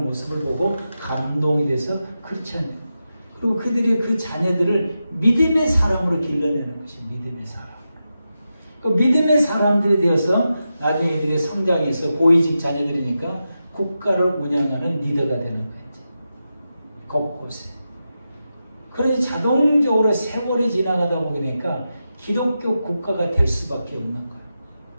모습을 보고 감동이 돼서 크리스찬. 그리고 그들이 그 자녀들을 믿음의 사람으로 길러내는 것이 믿음의 사람. 그 믿음의 사람들이 되어서 나중에 이들의 성장이 있어 고위직 자녀들이니까 국가를 운영하는 리더가 되는 거예요. 곳곳에. 그래서 자동적으로 세월이 지나가다 보니까 기독교 국가가 될 수밖에 없는 거예요.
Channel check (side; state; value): both; inverted; correlation -0.90